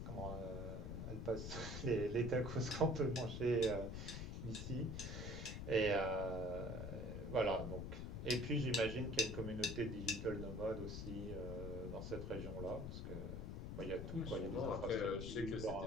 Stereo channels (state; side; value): noise; left; rumble, 5 dB below the sound